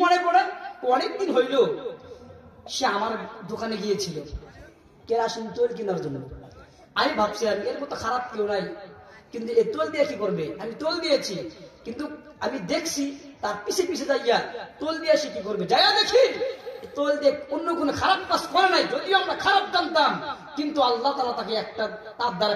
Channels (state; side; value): identical; both; correlation 1.00